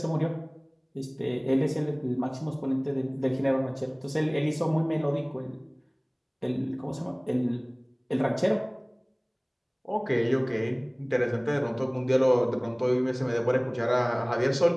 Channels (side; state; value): both; identical; correlation 1.00